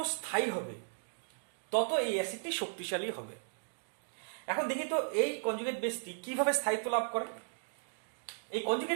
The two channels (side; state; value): left; silent; digital silence